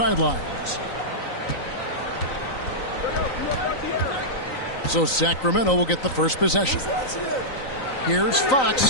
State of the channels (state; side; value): late; right; 3.9 ms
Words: So Sacramento will get the first possession. Here's